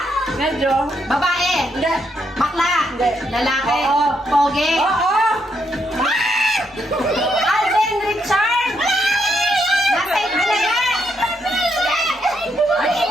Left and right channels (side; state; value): both; normal; correlation 0.77